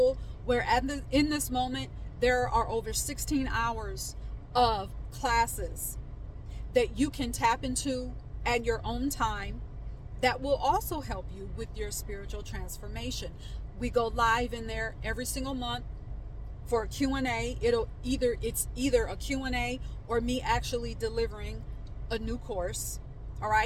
where in this moment, there are over 16 hours of classes that you can tap into at your own time that will also help you with your spiritual transformation. We go live in there every single month for a Q&A. It's either a Q&A or me actually delivering a new course. All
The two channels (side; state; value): both; identical; correlation 1.00